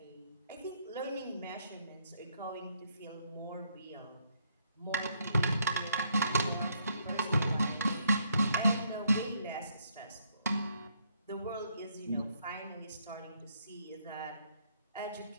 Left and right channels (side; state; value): both; inverted; correlation -0.71